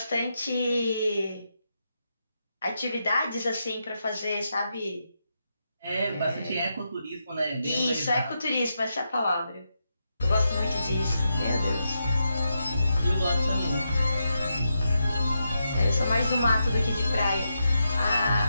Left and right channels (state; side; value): inverted; both; correlation -0.85